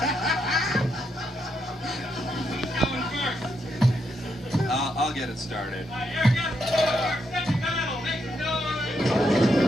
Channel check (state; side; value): normal; both; correlation 0.80